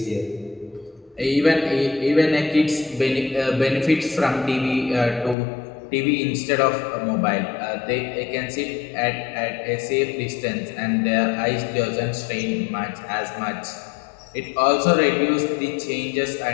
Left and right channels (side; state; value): right; drops out; at 5.4 s